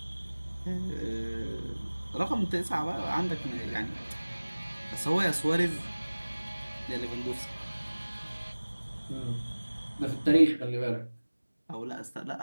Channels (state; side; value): inverted; both; correlation -1.00